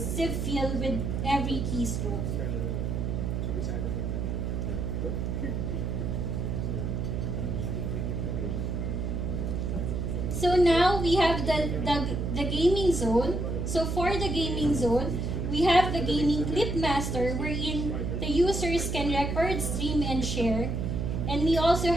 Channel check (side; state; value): right; noise; hum, 1 dB below the sound